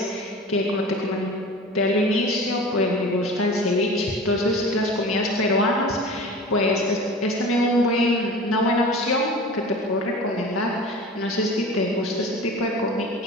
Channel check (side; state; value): both; normal; correlation 0.37